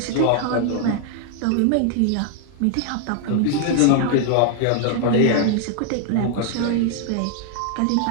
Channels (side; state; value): both; different; correlation 0.00